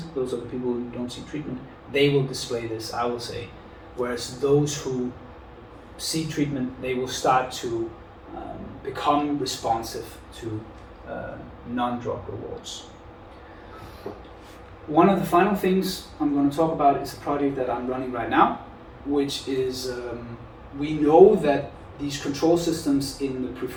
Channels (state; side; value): identical; both; correlation 1.00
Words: those are the people who don't seek treatment, they will display this, I will say. Whereas those who seek treatment, they will start to become responsive to non-drug rewards. One of the final things I'm going to talk about is a project that I'm running right now, which is we know that these control systems in the